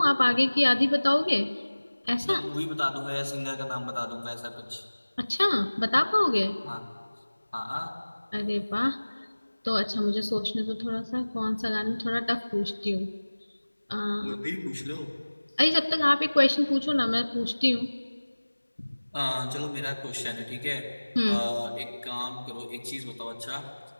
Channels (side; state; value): both; inverted; correlation -1.00